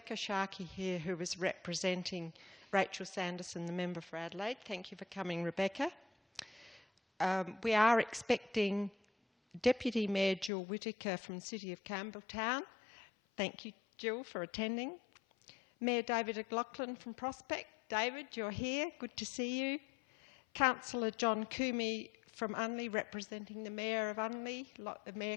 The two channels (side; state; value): right; drops out; at 10.5 s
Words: Sharkey here, who is representing Rachel Sanderson, the member for Adelaide. Thank you for coming, Rebecca. We are expecting Deputy Mayor Jill Whittaker from the City of Campbelltown. Thank you, Jill, for attending. Mayor David McLaughlin from Prospect. David, you're here. Good to see you. Councillor John Coomey from Unley, representing the Mayor of Unley. Mayor